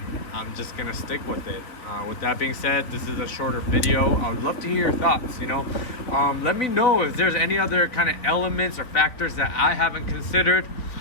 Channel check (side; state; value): right; late; 3.8 ms